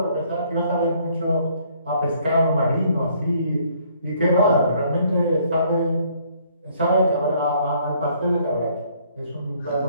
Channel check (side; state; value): both; inverted; correlation -0.64